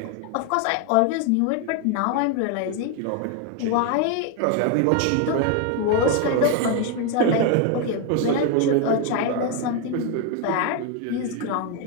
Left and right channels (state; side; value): different; both; correlation 0.01